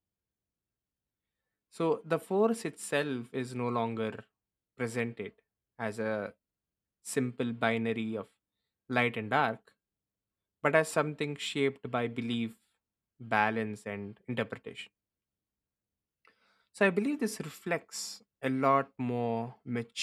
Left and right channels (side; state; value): both; identical; correlation 1.00